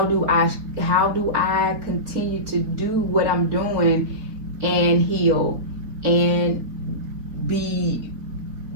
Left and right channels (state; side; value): late; left; 4.3 ms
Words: do I continue to do what I'm doing and heal and be